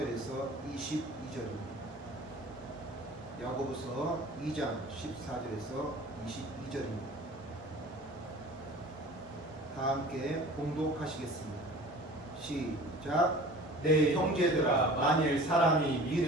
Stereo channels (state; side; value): normal; both; correlation 0.43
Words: 22절입니다. 야고보서 2장 14절에서 22절입니다. 다 함께 봉독하시겠습니다. 시작. 내 형제들아, 만일 사람이